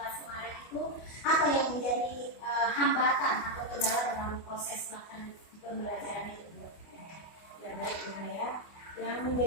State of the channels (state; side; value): late; right; 24 ms